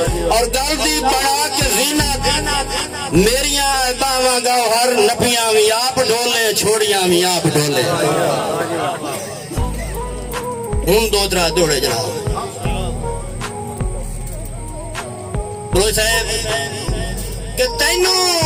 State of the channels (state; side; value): identical; both; correlation 1.00